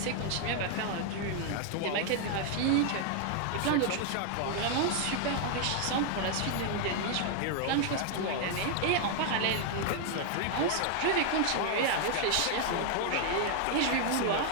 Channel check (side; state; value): both; different; correlation 0.00